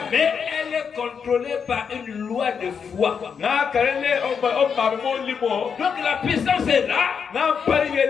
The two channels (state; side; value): quieter; right; 6.6 dB